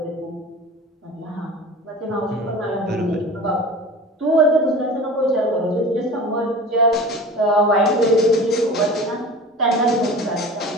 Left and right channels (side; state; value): both; normal; correlation 0.37